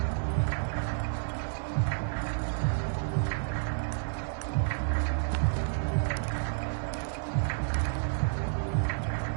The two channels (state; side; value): silent; left; digital silence